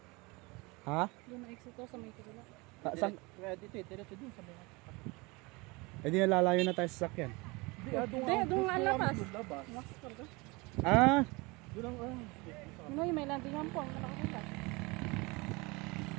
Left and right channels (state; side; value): quieter; left; 25.5 dB